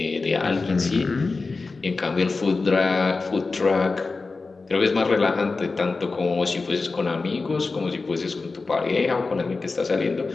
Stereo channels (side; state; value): right; quieter; 3.9 dB